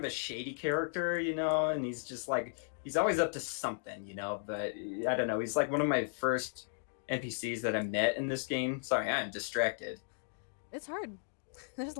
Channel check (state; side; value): silent; right; digital silence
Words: a shady character, you know, and he's just like he's always up to something, you know. But I don't know. He's like one of my first NPCs that I met in this game. Sorry, I'm distracted. It's hard. There's a